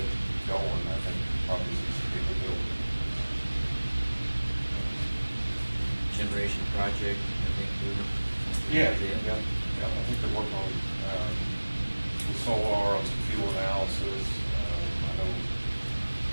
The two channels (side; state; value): both; inverted; correlation -1.00